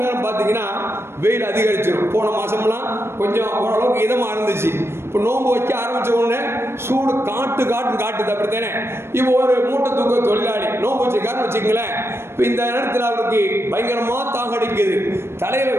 நேரம் பார்த்தீங்கன்னா வெயில் அதிகரிச்சிடும். போன மாதம்லாம் கொஞ்சம் ஓரளவுக்கு இதமாக இருந்துச்சு. இப்போ நோன்பு வைக்க ஆரம்பித்த உடனே சூடு காட்டுது, அப்படித்தானே? இப்போ ஒரு மூட்டை தூக்க தொழிலாளி நோன்பு வச்சுக்காருன்னு வச்சுக்கங்களேன், இப்போ இந்த நேரத்தில் அவருக்கு பயங்கரமாக தாகடிக்குது, தலையில்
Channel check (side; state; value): left; late; 0.12 ms